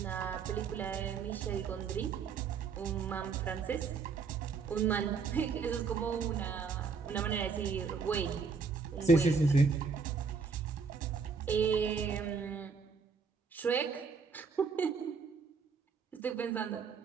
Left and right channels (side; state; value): left; quieter; 5.2 dB